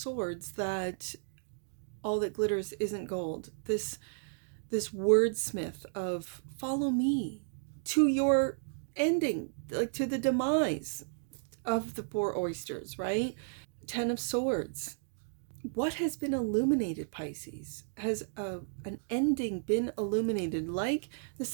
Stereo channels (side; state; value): left; silent; digital silence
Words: that all that glitters isn't gold. This wordsmith of follow me to your ending, like to the demise of the poor oysters, right? Ten of Swords. What has been illuminated, Pisces? Has an ending been illuminated? Like the